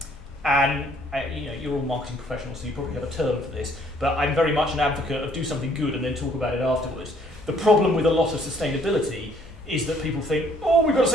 And you're all marketing professionals, so you probably have a term for this, but I'm very much an advocate of do something good and then talk about it afterwards. The problem with a lot of sustainability is that people think, oh, we've got to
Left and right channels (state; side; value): normal; both; correlation 0.63